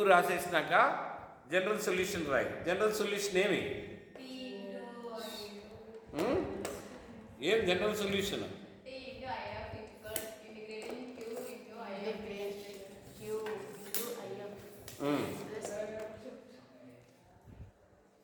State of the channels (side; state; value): both; identical; correlation 1.00